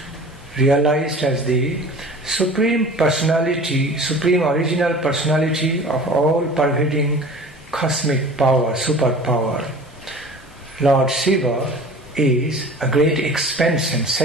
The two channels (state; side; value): normal; both; correlation 0.42